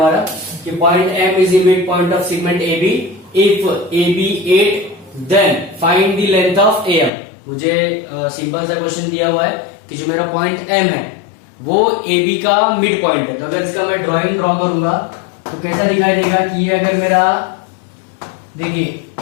कि point M is the mid point of segment AB if AB 8 then find the length of AM। मुझे सिंपल सा क्वेश्चन दिया हुआ है कि जो मेरा पॉइंट M है वो AB का मिड पॉइंट है। तो अगर इसका मैं ड्रॉ करूंगा तो कैसा दिखाई देगा कि ये अगर मेरा देखिए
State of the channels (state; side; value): drops out; right; at 7.1 s